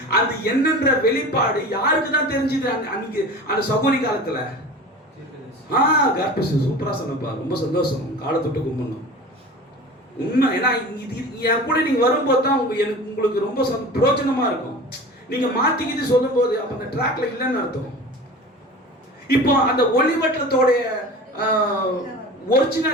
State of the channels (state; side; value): normal; both; correlation 0.36